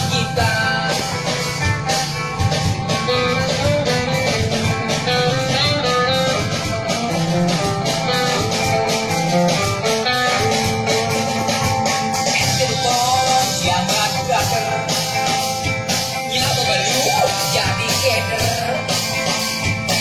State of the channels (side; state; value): both; identical; correlation 1.00